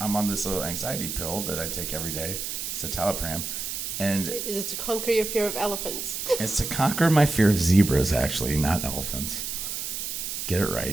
I'm on this little anxiety pill that I take every day. It's citalopram. And Is it to conquer your fear of elephants? it's to conquer my fear of zebras, actually, not elephants. Get it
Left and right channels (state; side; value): noise; right; hiss, 4 dB below the sound